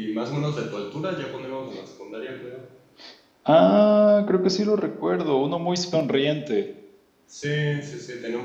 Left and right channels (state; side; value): identical; both; correlation 1.00